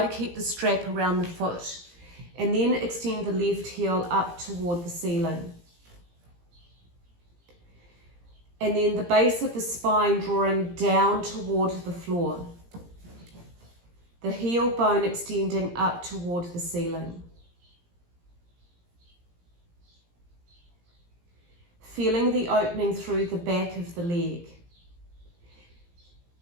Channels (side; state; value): left; late; 17 ms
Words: to keep the strap around the foot and then extend the left heel up toward the ceiling. And then the base of the spine drawing down toward the floor. the heel bone extending up toward the ceiling. Feeling the opening through the back of the leg.